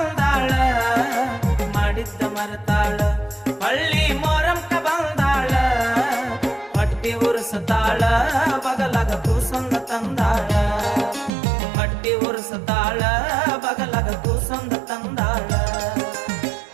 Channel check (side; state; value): left; drops out; at 11.3 s